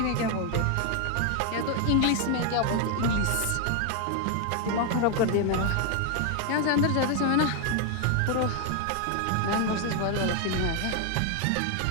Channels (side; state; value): both; different; correlation 0.01